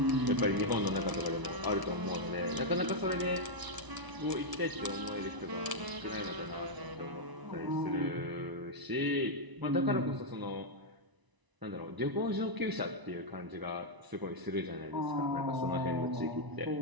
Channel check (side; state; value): left; late; 1.0 ms